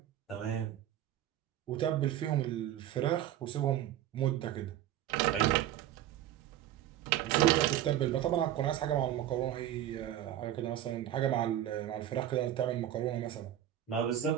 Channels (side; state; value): left; quieter; 12.0 dB